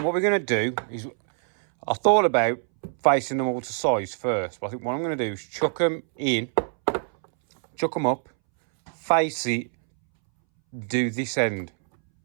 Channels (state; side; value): silent; left; 62 dB below the other